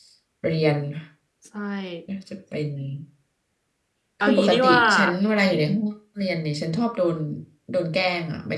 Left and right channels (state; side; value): identical; both; correlation 1.00